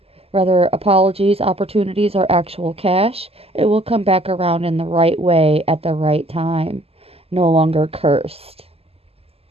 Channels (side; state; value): left; late; 0.29 ms